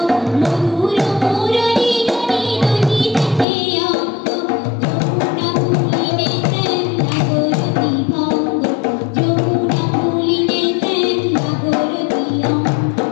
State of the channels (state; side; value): drops out; right; at 3.5 s